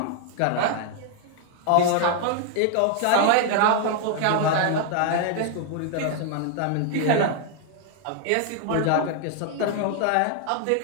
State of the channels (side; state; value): both; different; correlation 0.00